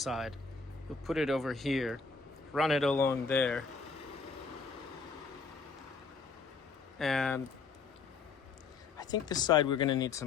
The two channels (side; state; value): right; quieter; 4.7 dB